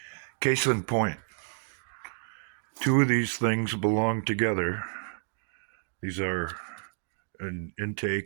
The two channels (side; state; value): left; silent; digital silence